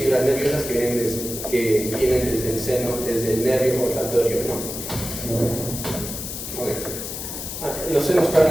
nerviosas que vienen desde el seno, desde el nervio olfatorio, ¿no? Okay. Los senos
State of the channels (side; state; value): left; noise; hiss, 7 dB below the sound